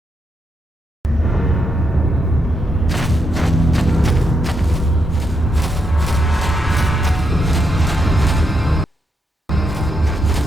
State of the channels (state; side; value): normal; both; correlation 0.81